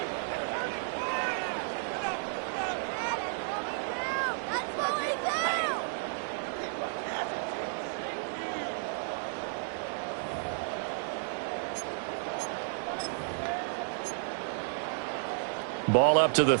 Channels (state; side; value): silent; left; digital silence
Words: Ball up to the